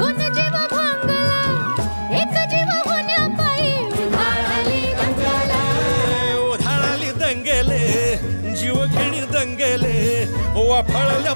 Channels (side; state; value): both; inverted; correlation -1.00